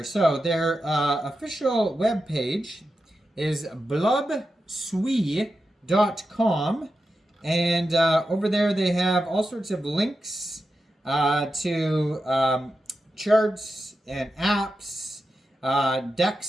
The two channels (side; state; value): both; normal; correlation 0.90